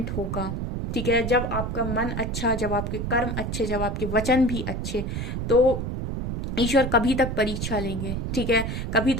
होगा। ठीक है, जब आपका मन अच्छा, जब आपके कर्म अच्छे, जब आपके वचन भी अच्छे, तो ईश्वर कभी तक परीक्षा लेंगे। ठीक है, कभी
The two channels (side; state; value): right; noise; rumble, 3 dB below the sound